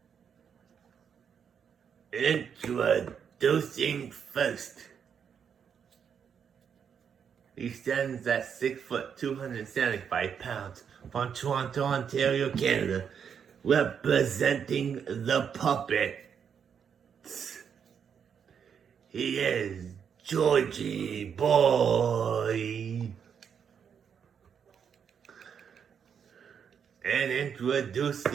Introducing first. He stands at 6 foot 275 pounds from Toronto, Ontario, Canada, representing the Puppets. He is Georgie Boy. And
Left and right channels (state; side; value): quieter; left; 7.4 dB